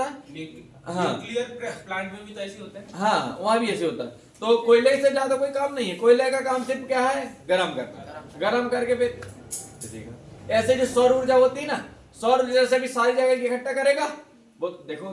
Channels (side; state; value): both; identical; correlation 1.00